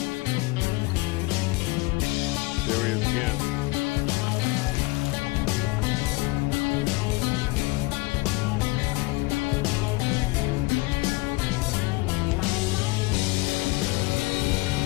There he is again.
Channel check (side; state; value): right; quieter; 23.4 dB